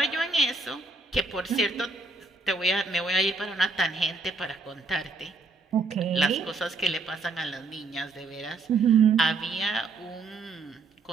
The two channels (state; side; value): quieter; left; 3.6 dB